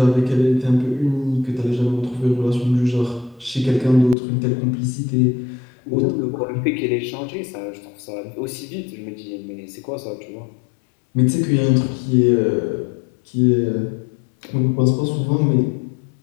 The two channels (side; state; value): right; drops out; at 4.2 s